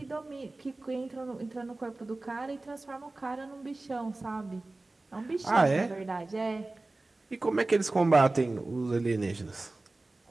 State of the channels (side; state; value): left; quieter; 3.1 dB